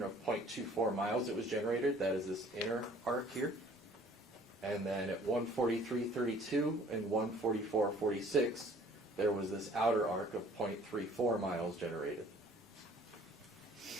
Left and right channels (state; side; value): normal; both; correlation 0.54